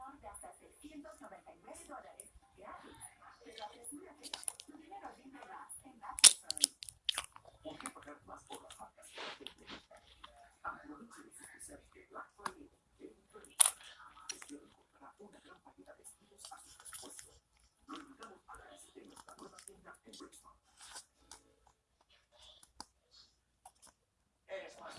de hasta $699 gratis. Pero apresúrate, tu dinero rinde más en Masterson. ¿Por qué pagar más por las marcas que la gente busca? Aproveche los especiales de Black Friday de Electronic. Usted encontrará una gran variedad de estilos a sus presupuestos. Lo invitamos a que visite nuestra nueva tienda en Brixton.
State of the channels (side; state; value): both; identical; correlation 1.00